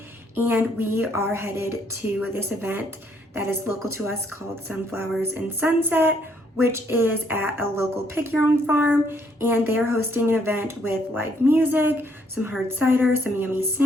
and we are headed to this event that is local to us called Sunflowers and Sunset, which is at a local pick your own farm, and they are hosting an event with live music, some hard cider, some yummy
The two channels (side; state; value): both; normal; correlation 0.69